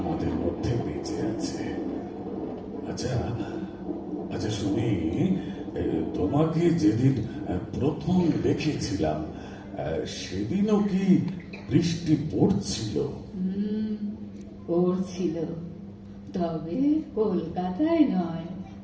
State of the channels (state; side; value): identical; both; correlation 1.00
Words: মধ্যে বেঁচে আছে। আচ্ছা আচ্ছা শুনি, তোমাকে যেদিন প্রথম দেখেছিলাম সেদিনও কি বৃষ্টি পড়ছিল? পড়ছিল, তবে কলকাতায় নয়,